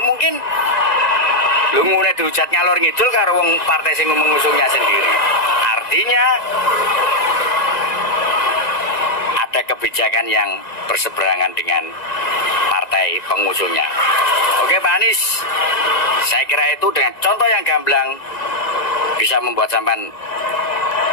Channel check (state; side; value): late; right; 1.9 ms